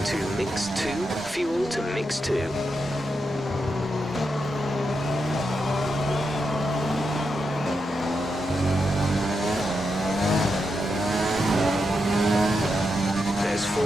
to mix 2, fuel to mix 2. There's 4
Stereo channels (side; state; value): both; normal; correlation 0.85